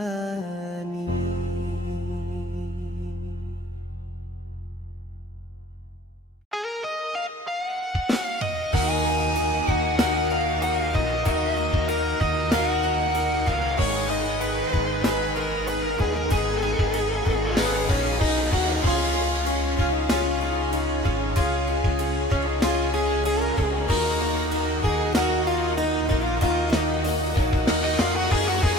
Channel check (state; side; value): normal; both; correlation 0.51